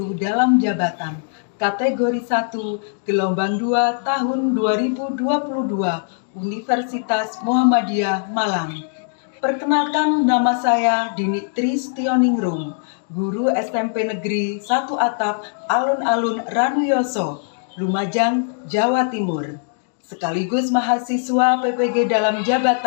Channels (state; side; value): silent; right; digital silence